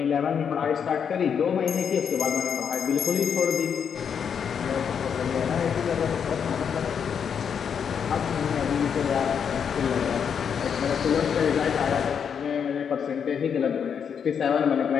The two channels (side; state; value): right; quieter; 7.3 dB